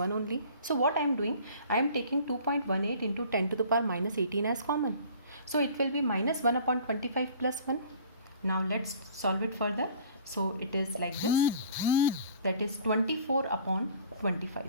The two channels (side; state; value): both; inverted; correlation -0.49